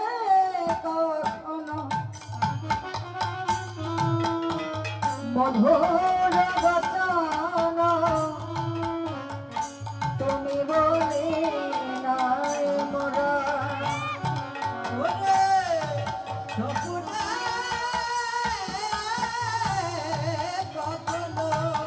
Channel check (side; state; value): both; identical; correlation 1.00